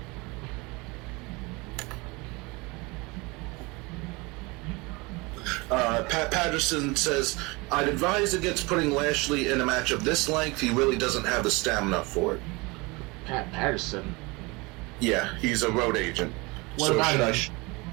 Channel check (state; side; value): quieter; left; 25.6 dB